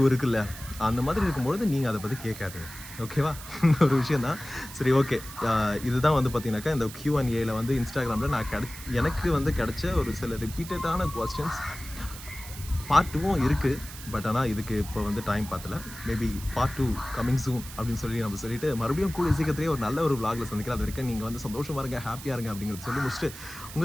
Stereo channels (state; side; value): noise; right; hiss, 14 dB below the sound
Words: இருக்குல்ல, அந்த மாதிரி இருக்கும்பொழுது நீங்கள் அதை பற்றி கேட்காதீங்க, ஓகேவா? ஒரு விஷயந்தான். சரி, ஓகே. இதுதான் வந்து பார்த்தீங்கன்னாக்கா இந்த Q&Aல வந்து இன்ஸ்டாகிராமில் நான் எனக்கு வந்து கிடைச்ச ஒரு சில ரிப்பீட்டடான கொஸ்டின்ஸ். பார்ட் 2வும் இருக்குது, பட் ஆனால் இதுக்கு இப்போ வந்து டைம் பார்த்தல. மேபி பார்ட் 2 கமிங் சூன் அப்படின்னு சொல்லி நம்ம சொல்லிட்டு மறுபடியும் கூடிய சீக்கிரத்திலே ஒரு நல்ல ஒரு vlogல சந்திக்கிறேன். அது வரைக்கும் நீங்கள் வந்து சந்தோஷமாக இருங்க, ஹாப்பியாக இருங்க அப்படிங்கிறது சொல்லி முடிச்சுட்டு